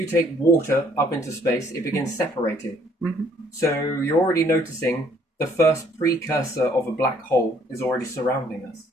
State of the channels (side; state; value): both; normal; correlation 0.63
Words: take water up into space, it begins separating. So you're already noticing the first precursor of a black hole is already surrounding us.